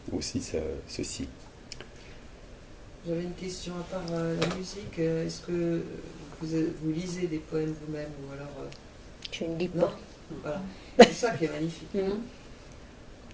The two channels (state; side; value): identical; both; correlation 1.00